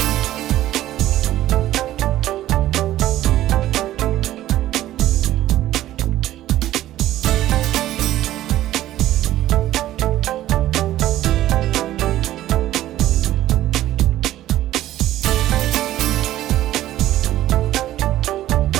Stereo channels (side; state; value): left; quieter; 14.0 dB